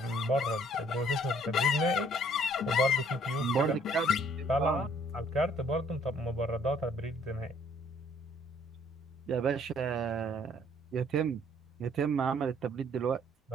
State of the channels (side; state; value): both; normal; correlation 0.62